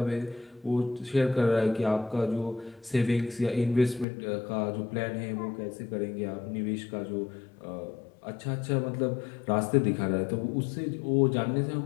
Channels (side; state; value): right; drops out; at 4.0 s